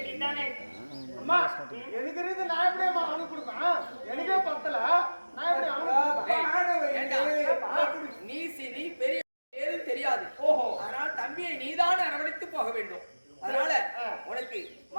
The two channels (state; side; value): inverted; both; correlation -1.00